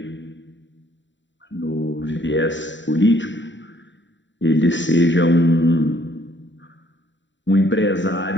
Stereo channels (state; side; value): late; right; 0.54 ms